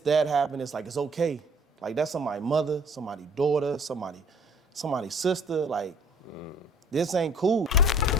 happened, it's like it's okay. Like that's somebody's mother, somebody's daughter, somebody's sister. Like this ain't cool.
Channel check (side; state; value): both; normal; correlation 0.54